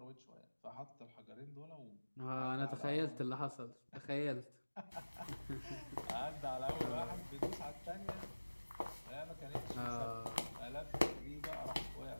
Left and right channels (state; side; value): inverted; both; correlation -1.00